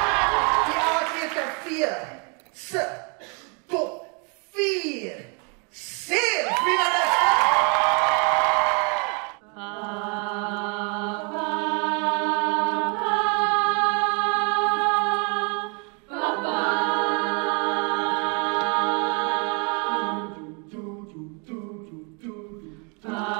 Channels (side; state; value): left; quieter; 35.4 dB